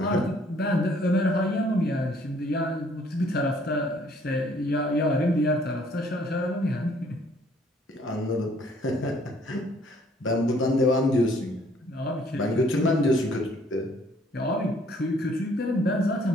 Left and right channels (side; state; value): both; normal; correlation 0.61